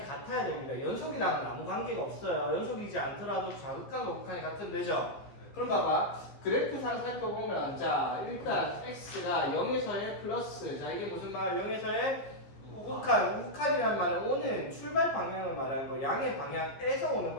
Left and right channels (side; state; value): right; late; 15 ms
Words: 같아야 됩니다. 연속이랑은 아무 관계가 없어요. 연속이지 않더라도 자극한과 극한이 같으면 되죠. 그럼 봐봐. 그래프상 살펴보면 자, 일단 x가 0에서 1 플러스 자, 이게 무슨 말? 0에서 1 우극한. 우극한이란 말은 오는 출발 방향을 말하는 거예요. 양의 방향에서 오는